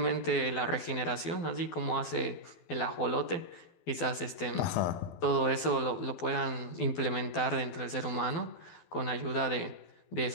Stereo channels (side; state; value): right; late; 12 ms